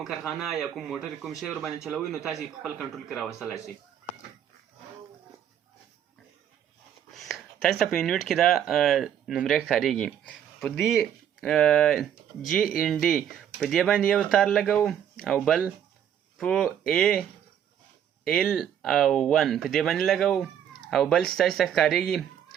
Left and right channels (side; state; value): left; quieter; 9.6 dB